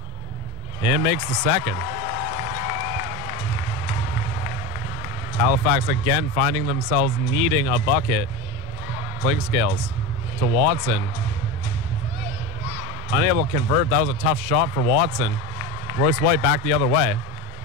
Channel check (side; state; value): both; normal; correlation 0.23